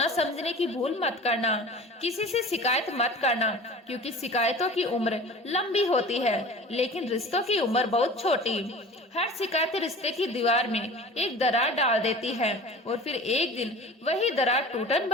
समझने की भूल मत करना। किसी से शिकायत मत करना, क्योंकि शिकायतों की उम्र लंबी होती है लेकिन रिश्तों की उम्र बहुत छोटी। हर शिकायत रिश्ते की दीवार में एक दरार डाल देती है और फिर एक दिन वही दरार टूटन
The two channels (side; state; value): both; normal; correlation 0.39